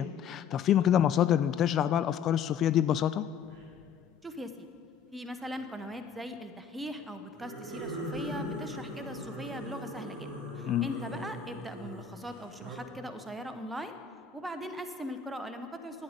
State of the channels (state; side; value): quieter; right; 7.4 dB